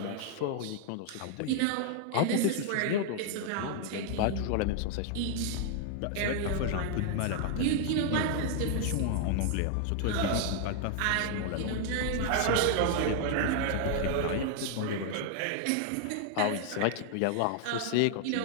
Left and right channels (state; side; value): different; both; correlation 0.00